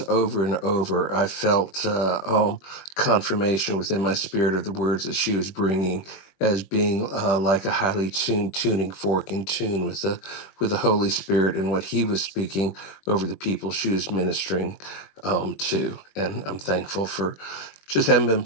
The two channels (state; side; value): late; right; 21 ms